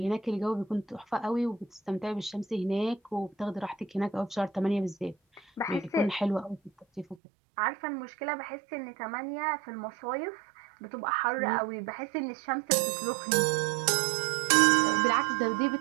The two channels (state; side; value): drops out; left; at 7.2 s